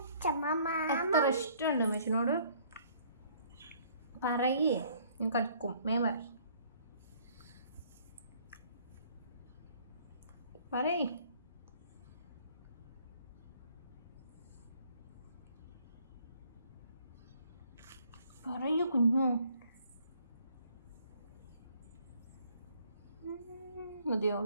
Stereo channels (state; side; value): inverted; both; correlation -0.60